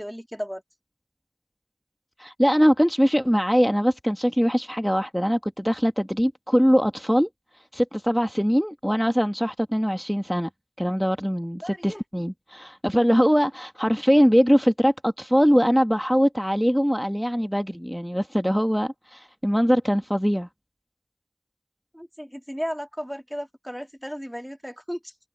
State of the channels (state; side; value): identical; both; correlation 1.00